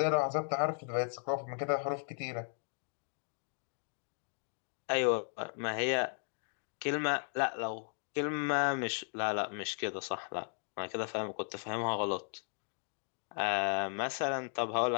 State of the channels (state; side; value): silent; right; 54 dB below the other